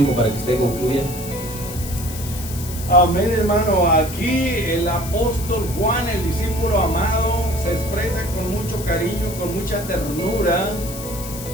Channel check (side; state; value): left; noise; hiss, 11 dB below the sound